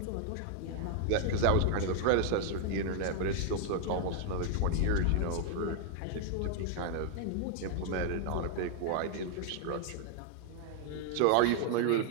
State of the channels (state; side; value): different; both; correlation 0.00